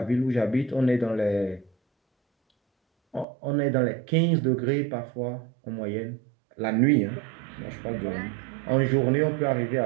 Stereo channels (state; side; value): drops out; left; at 3.2 s